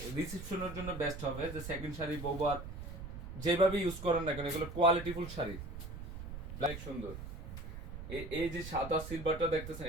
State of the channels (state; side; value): noise; right; rumble, 9 dB below the sound